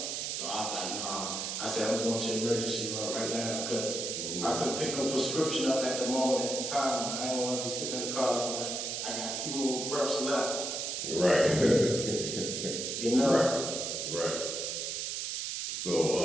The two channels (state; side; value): noise; right; hiss, 3 dB below the sound